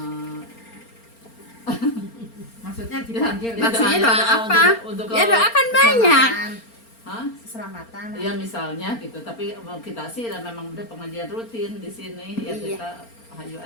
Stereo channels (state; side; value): late; right; 4.4 ms